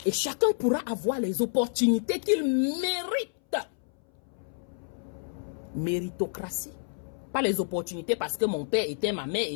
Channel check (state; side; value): silent; right; 59 dB below the other